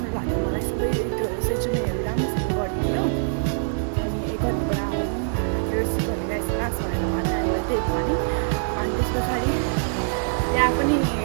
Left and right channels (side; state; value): left; silent; digital silence